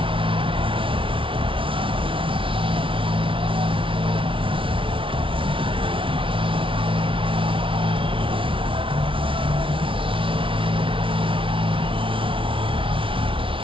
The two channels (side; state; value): left; late; 0.25 ms